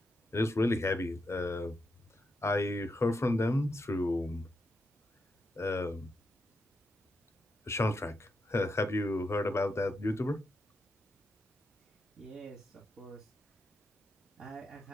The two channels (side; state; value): both; normal; correlation 0.84